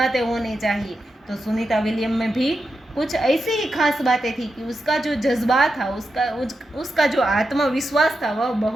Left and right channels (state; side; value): normal; both; correlation 0.88